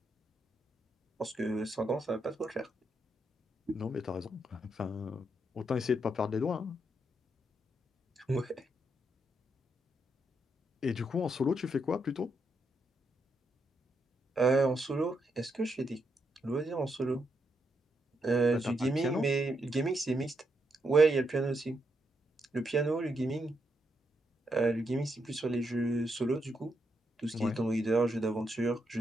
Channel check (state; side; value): normal; both; correlation 0.80